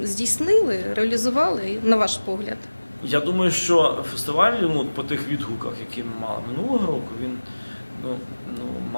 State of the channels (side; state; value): both; inverted; correlation -1.00